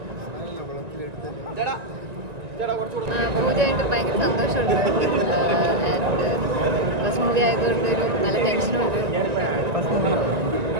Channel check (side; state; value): left; late; 1.9 ms